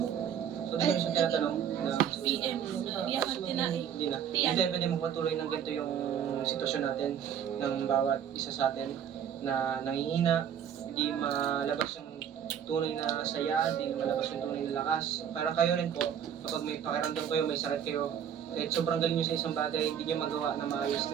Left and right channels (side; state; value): left; quieter; 8.8 dB